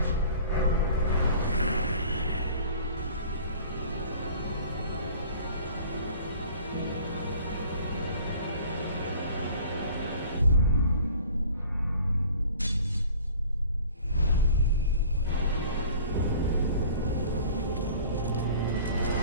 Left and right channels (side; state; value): both; inverted; correlation -0.47